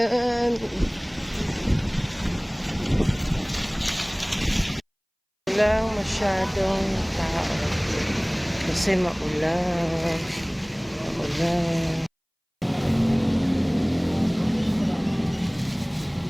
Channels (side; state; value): both; identical; correlation 1.00